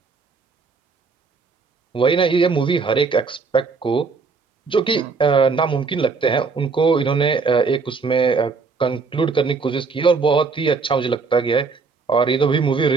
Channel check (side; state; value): left; quieter; 4.7 dB